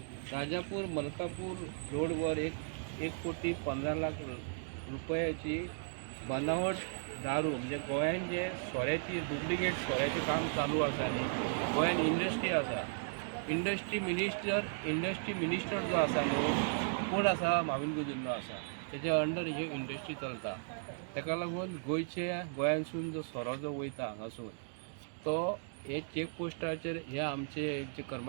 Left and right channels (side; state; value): left; silent; digital silence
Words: राजापूर मलकापूर रोडवर 1,15 रुपयाची बनावट दारू म्हणजे गोंयान जे सोऱ्याची डुप्लिकेट सोऱ्याचें काम चालू आसा न्ही. गोंयान इंडस्ट्री आसा. इंडस्ट्री मिनिस्टर जो आसा न्हू कोण आसा? माविन गुदिन्हो आसा. तेज्या अंडर ही इंडस्ट्री चलता. ताका लागून गोंयांसून जो सोरो जो वयता हांगासून तो हे चेक पोस्टाचेर हे आमचे जे